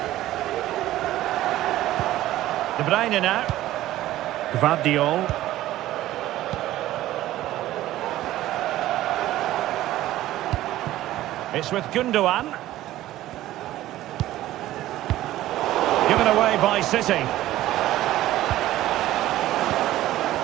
De Bruyne now. Gvardiol. It's with Gundogan. Given away by City.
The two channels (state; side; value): quieter; left; 14.8 dB